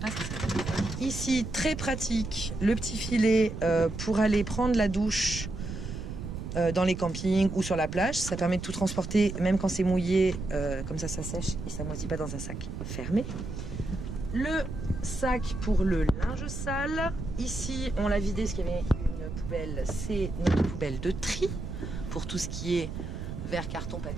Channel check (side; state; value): right; noise; rumble, 7 dB below the sound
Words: s'en servir. Ici, très pratique, le petit filet pour aller prendre la douche dans les campings ou sur la plage. Ça permet de tout transporter, même quand c'est mouillé, comme ça sèche et ça moisit pas dans un sac fermé. Le sac pour le linge sale. Ici, on l'a vidé parce qu'il y avait une poubelle. C'est notre poubelle de tri pour tout ce qui est verre, carton,